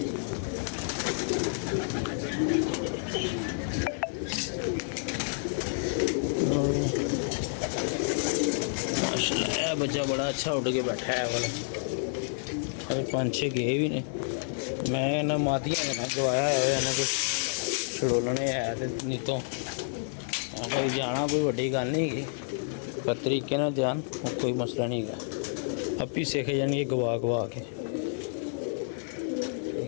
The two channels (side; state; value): right; silent; 58 dB below the other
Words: माशाल्लाह बच्चा बड़ा अच्छा उठ के बैठा है वाला अरे 5-6 गए भी ने मैं ना मातियां ना गवाया है ना कुछ छड़ोलने है ते नहीं तो भाई जाना कोई बड़ी गल नहीं है पर तरीके ना जान कोई मसला नहीं है आप ही सीख जाएंगे गवा गवा के